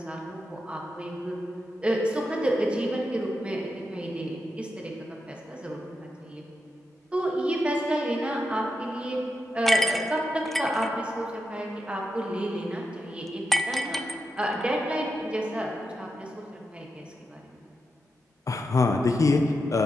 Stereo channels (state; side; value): normal; both; correlation 0.87